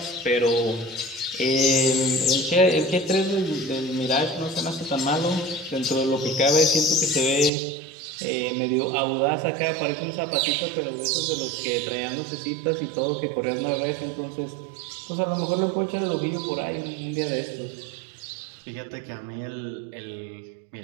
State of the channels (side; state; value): left; drops out; at 7.5 s